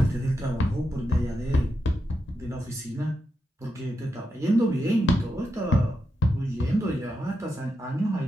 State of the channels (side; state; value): both; normal; correlation 0.86